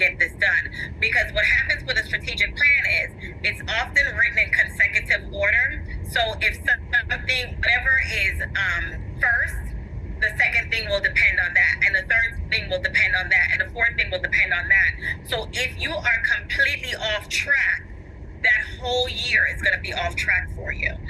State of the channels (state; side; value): identical; both; correlation 1.00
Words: this done. Because what happens with a strategic plan is it's often written in consecutive order. So if something, whatever is first, the second thing will depend on that, and the third thing will depend on that, and the fourth thing will depend on that. So if you are completely off track, that whole year is going to be off track for you.